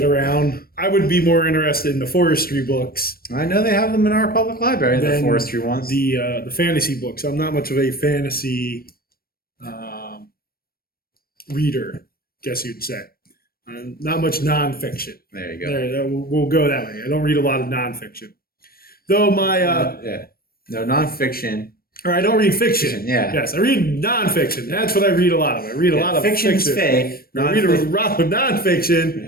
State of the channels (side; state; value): right; late; 0.44 ms